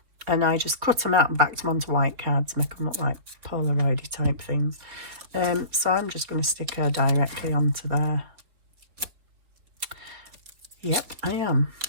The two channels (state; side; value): late; left; 4.3 ms